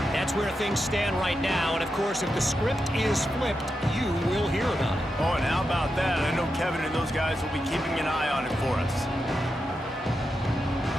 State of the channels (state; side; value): normal; both; correlation 0.87